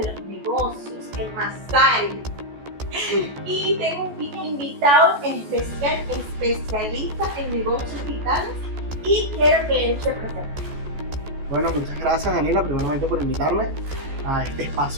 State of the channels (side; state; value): left; late; 14 ms